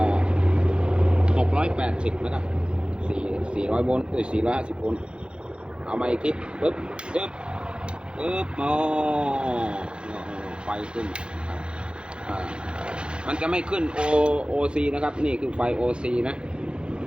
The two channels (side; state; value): left; late; 0.054 ms